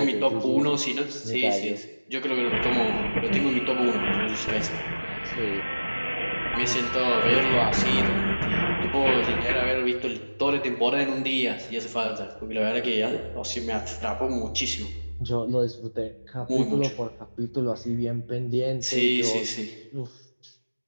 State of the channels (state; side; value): inverted; both; correlation -1.00